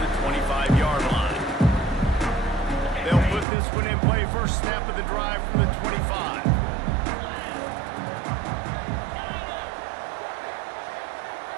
the 25-yard line. They'll put this one in play. First snap of the drive from the 25.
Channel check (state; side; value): drops out; left; at 3.5 s